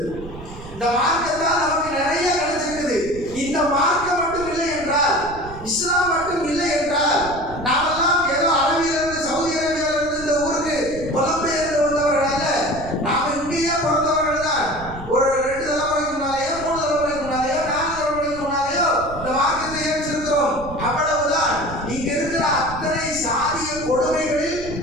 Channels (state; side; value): noise; right; rumble, 14 dB below the sound